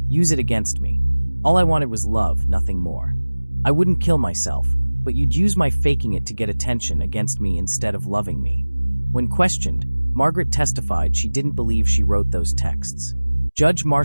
Use it against me. All I wanted was love, nothing more. I wouldn't kill myself, but you'd use my faking it to get attention against me instead of loving me." When questioned, Margaret testified she didn't believe she wrote those texts. Judge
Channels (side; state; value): both; inverted; correlation -1.00